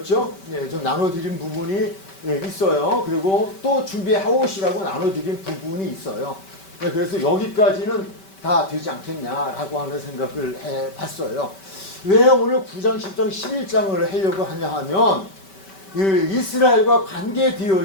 좀 나눠드린 부분이 있어요. 그리고 또 준비해오시라고 나눠드린 부분이 있어요. 그래서 여기까지는 다 되지 않겠냐라고 하는 생각을 해봤어요. 왜 오늘 9장, 10장, 11장을 하려고 하냐 하면 이스라엘과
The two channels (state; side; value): late; right; 5.2 ms